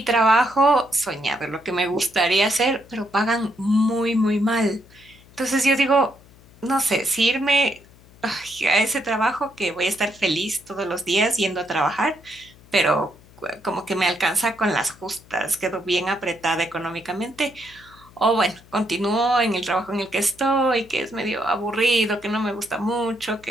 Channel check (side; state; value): left; noise; hum, 25 dB below the sound